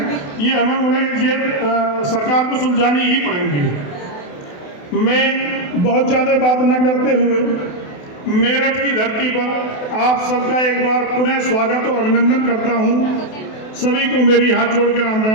ये हमें उन्हें सरकार को सुलझानी ही पड़ेंगी। मैं बहुत ज़्यादा बात न करते हुए मेरठ की धरती पर आप सबका एक बार पुनः स्वागत और अभिनंदन करता हूँ। सभी को मेरी हाथ जोड़ के राम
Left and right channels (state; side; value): late; right; 28 ms